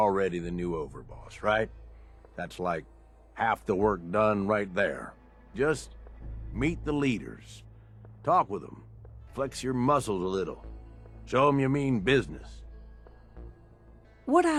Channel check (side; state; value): both; identical; correlation 1.00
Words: the new overboss, right? That's like half the work done right there. Just meet the leaders. Talk with them. Flex your muscles a little. Show them you mean business. What